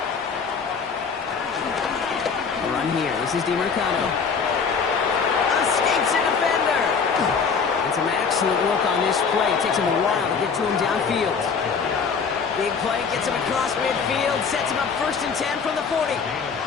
A run here. This is DiMercado. Escapes a defender. And some excellent work on this play. It takes him a while to get to him downfield. Big play gets him across midfield. Sets him up first and 10 from the 40.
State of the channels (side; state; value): right; quieter; 5.7 dB